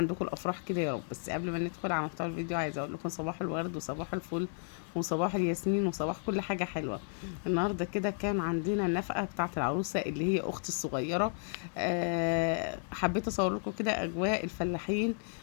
الافراح كده يا رب. بس قبل ما ندخل على محتوى الفيديو عايزه اقول لكم صباح الورد وصباح الفل وصباح الياسمين وصباح كل حاجه حلوه. النهارده كده كان عندنا النفقه بتاعه العروسه اللي هي اختي الصغيره. حبيت اصور لكم كده اجواء الفلاحين،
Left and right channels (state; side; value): silent; right; digital silence